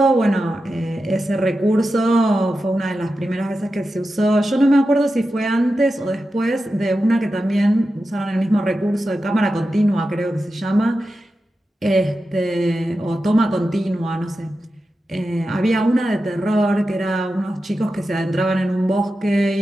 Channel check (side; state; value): both; normal; correlation 0.91